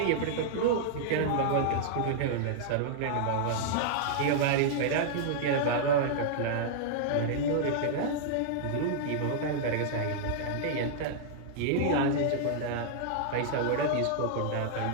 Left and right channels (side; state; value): both; different; correlation -0.01